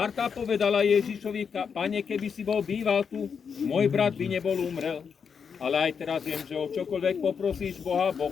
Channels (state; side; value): quieter; right; 6.4 dB